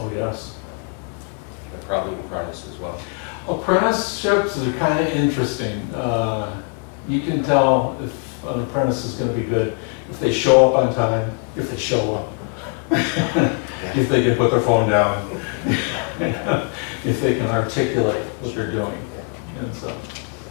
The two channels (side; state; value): right; quieter; 37.5 dB